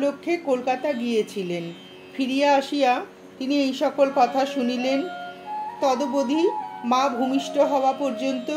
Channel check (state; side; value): identical; both; correlation 1.00